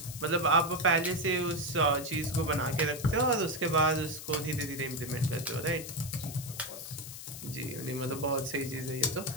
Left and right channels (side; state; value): left; noise; hiss, 11 dB below the sound